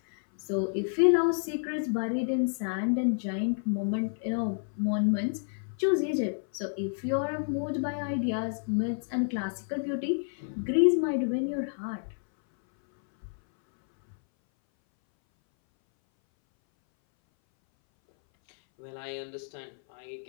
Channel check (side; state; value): right; silent; 58 dB below the other